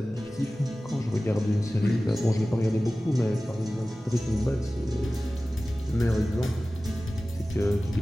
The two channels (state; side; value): normal; both; correlation 0.97